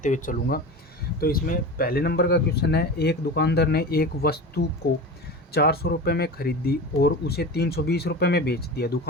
हुए चलूँगा। तो इसमें पहले नंबर का क्वेश्चन है, एक दुकानदार ने एक वस्तु को 400 रुपये में खरीदी और उसे 320 रुपये में बेच दिया।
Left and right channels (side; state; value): both; normal; correlation 0.29